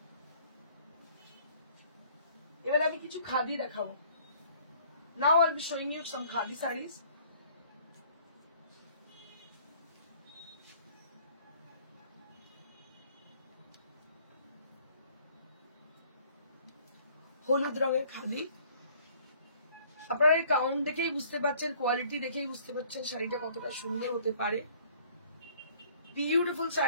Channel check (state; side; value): inverted; both; correlation -0.57